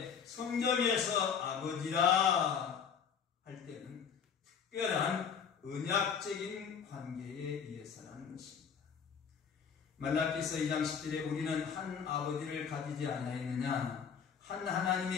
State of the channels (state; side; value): quieter; right; 7.0 dB